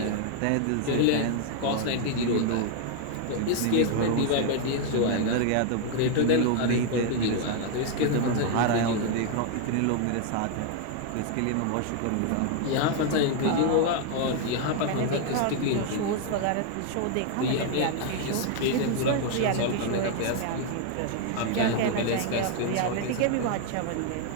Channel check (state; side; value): different; both; correlation 0.00